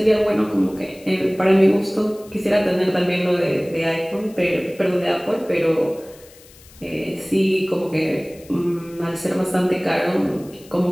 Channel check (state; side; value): noise; left; hiss, 24 dB below the sound